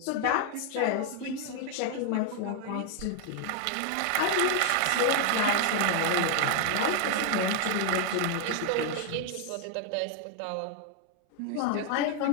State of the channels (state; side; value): different; both; correlation 0.00